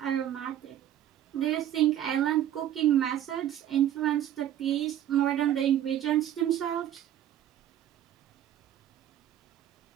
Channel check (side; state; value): left; quieter; 11.4 dB